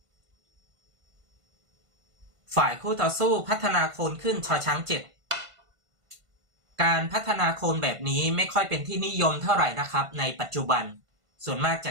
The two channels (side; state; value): left; late; 1.5 ms